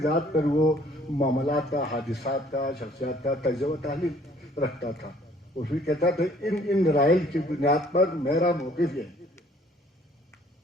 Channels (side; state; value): both; normal; correlation 0.58